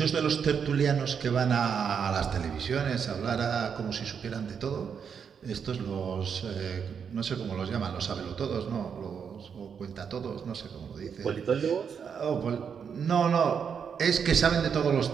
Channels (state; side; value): quieter; left; 7.0 dB